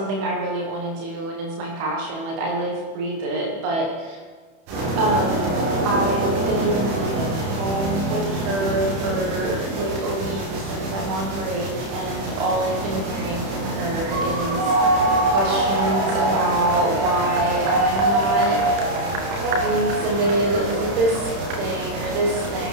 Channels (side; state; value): left; late; 31 ms